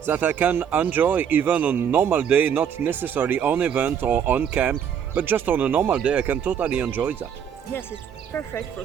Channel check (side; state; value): left; quieter; 8.3 dB